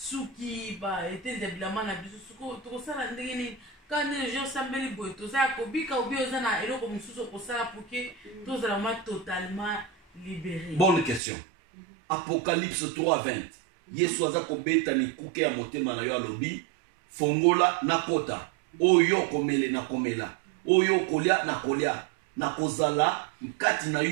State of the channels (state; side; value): drops out; left; at 11.2 s